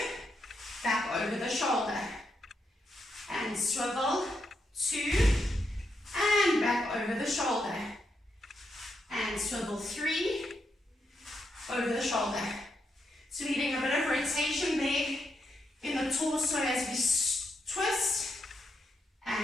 back over the shoulder. And swivel, 2, and back over the shoulder. And swivel, 3, over the shoulder. So we're getting a bit of rotation there in the torso as we twist.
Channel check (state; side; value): normal; both; correlation 0.82